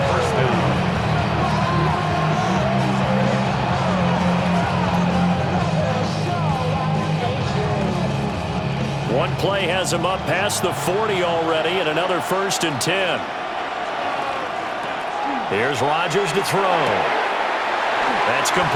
first down. One play has him up past the 40 already, and another 1st and 10. Here's Rodgers to throw. That's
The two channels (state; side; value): identical; both; correlation 1.00